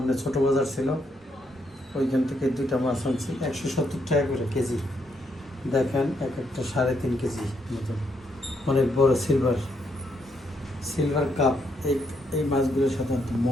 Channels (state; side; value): normal; both; correlation 0.76